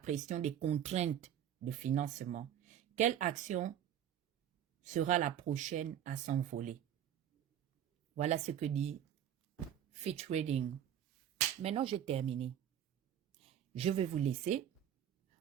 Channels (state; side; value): quieter; left; 10.1 dB